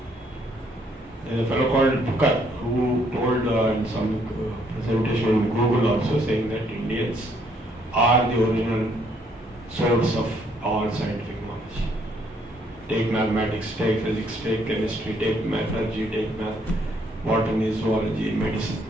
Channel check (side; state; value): both; normal; correlation 0.68